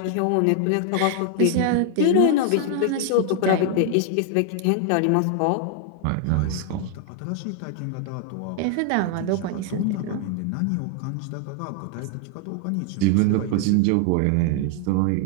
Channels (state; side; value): different; both; correlation 0.00